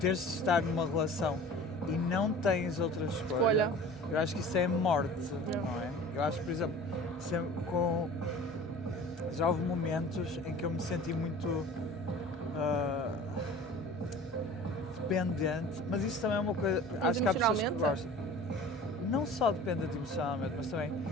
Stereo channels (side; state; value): both; normal; correlation 0.42